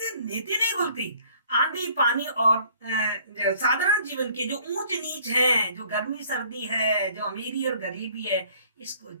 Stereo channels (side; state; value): both; inverted; correlation -0.57